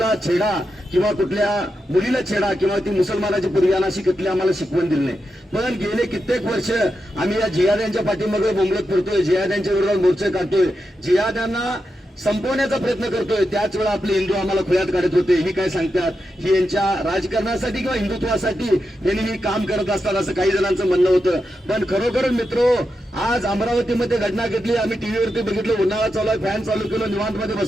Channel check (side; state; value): both; normal; correlation 0.87